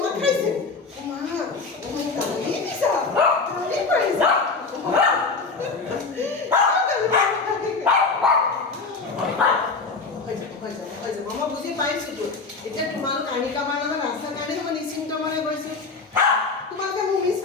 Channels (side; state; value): right; quieter; 4.2 dB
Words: খাইছে মা গালি দিছা গালি পাৰিছা মই বুজি পাইছোতো এতিয়া তোমালোক আনিকাবাৰ লগত ৰাস্তাৰ কাৰণে মই নিশ্চিন্ত মনে গৈছো তোমালোকে মোক মিছ